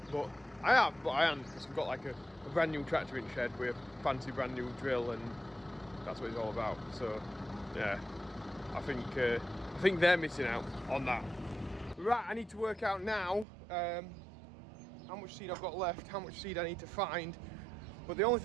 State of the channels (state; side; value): drops out; left; at 13.5 s